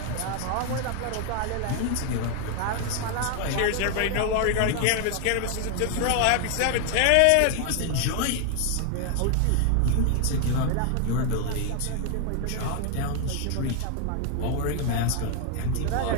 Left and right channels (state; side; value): different; both; correlation 0.01